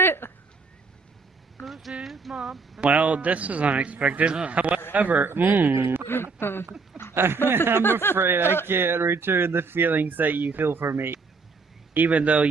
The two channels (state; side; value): quieter; left; 4.4 dB